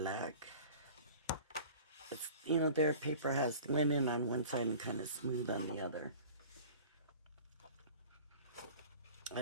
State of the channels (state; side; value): inverted; both; correlation -0.42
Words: It's, you know, their paper has linen on one side and kind of smooth on the other. A